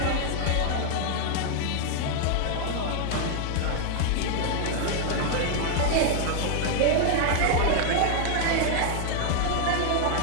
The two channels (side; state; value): both; different; correlation 0.00